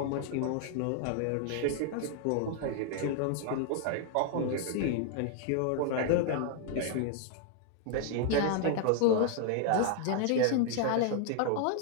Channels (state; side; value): different; both; correlation 0.00